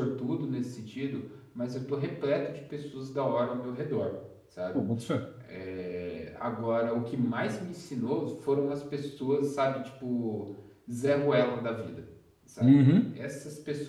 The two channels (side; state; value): both; identical; correlation 1.00